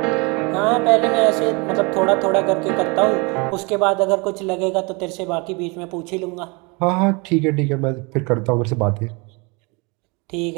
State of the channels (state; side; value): quieter; left; 29.3 dB